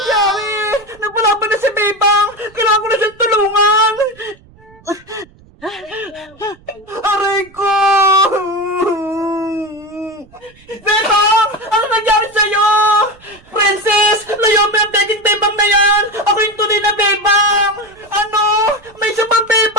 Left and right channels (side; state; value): right; noise; rumble, 27 dB below the sound